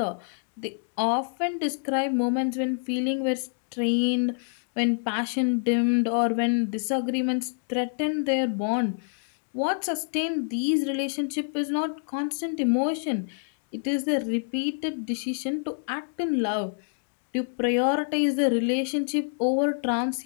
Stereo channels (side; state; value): right; silent; digital silence